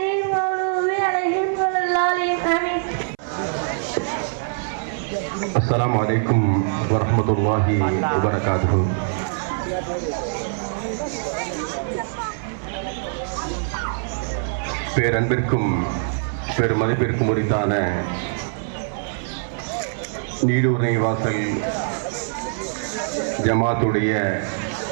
المغضوب عليهم ولا الضالين آمين. السلام عليكم ورحمة الله وبركاته. பேரன்பிற்கும் பெருமதிப்பிற்கும் உரித்தான நீடூர் நெய்வாசல் ஜமாத்துடைய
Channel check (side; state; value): left; silent; 62 dB below the other